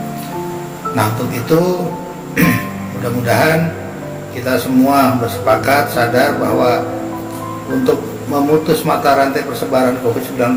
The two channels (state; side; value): identical; both; correlation 1.00